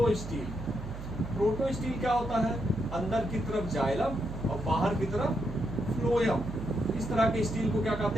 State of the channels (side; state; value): right; noise; hum, 9 dB below the sound